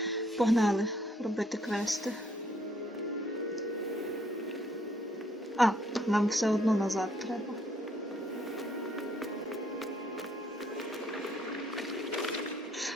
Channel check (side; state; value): both; normal; correlation 0.67